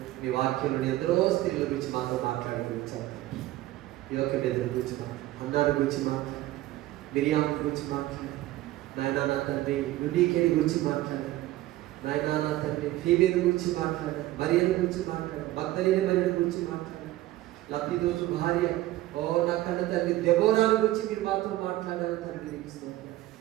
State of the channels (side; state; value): left; quieter; 16.1 dB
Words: మీ వాక్యంలో ఎందరో స్త్రీల గురించి మాతో మాట్లాడుకుంటారు. యోగబేద గురించి మాట్లాడు, అన్నాడు గురించి మాట్లాడు, మిరియాం గురించి మాట్లాడు, నాయనా నా తండ్రి యునీకేని గురించి మాట్లాడారు, నాయనా నా తండ్రి ఫీబేని గురించి మాట్లాడారు, మరియను గురించి మాట్లాడారు, మగ్దలేని మరియను గురించి మాట్లాడారు, లబ్ధిదోసు భార్య నా కన్న తండ్రి దెబోరాల గురించి మీరు మాతో మాట్లాడారు తండ్రి.